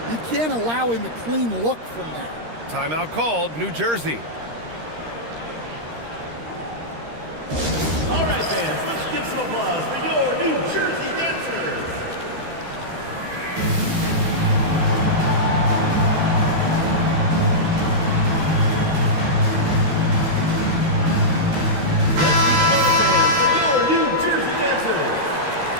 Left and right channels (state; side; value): late; left; 13 ms